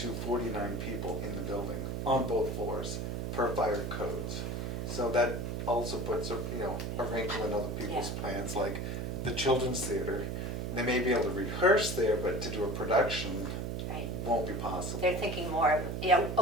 49 people in the building, on both floors, per fire codes. So that also puts, you know, a wrinkle in other people's plans, like the children's theater. They may be able to rehearse there, but to do a production Right. won't be possible. They're thinking more of,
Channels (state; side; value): noise; right; hum, 3 dB below the sound